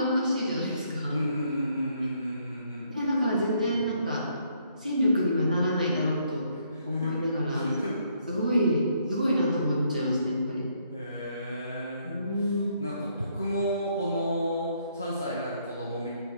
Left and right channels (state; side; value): inverted; both; correlation -0.70